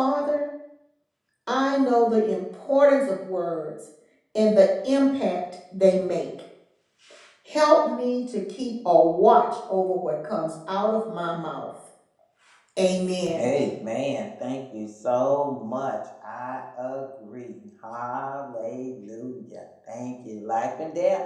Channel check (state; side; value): identical; both; correlation 1.00